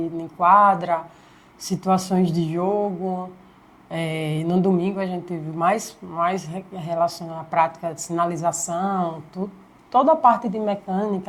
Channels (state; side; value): identical; both; correlation 1.00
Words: quadra, situações de jogo. No domingo a gente teve mais relacionado à prática de sinalização, toda a parte de